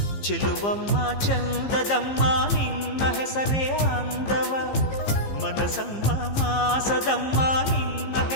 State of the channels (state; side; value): late; right; 15 ms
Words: ಚೆಲುವಮ್ಮ ಚಂದದಮ್ಮ ನಿನ್ನ ಹೆಸರೇ ಅಂದವ, ಮನಸಮ್ಮ ಮಾಸದಮ್ಮ ನಿನ್ನ